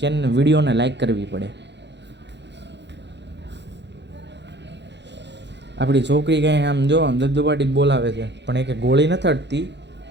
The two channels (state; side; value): late; left; 0.51 ms